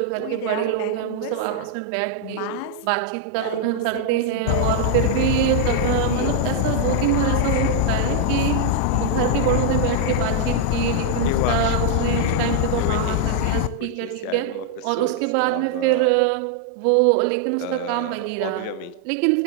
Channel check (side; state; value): both; different; correlation -0.01